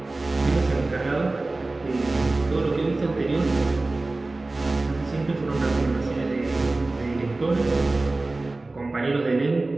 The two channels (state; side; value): quieter; left; 3.1 dB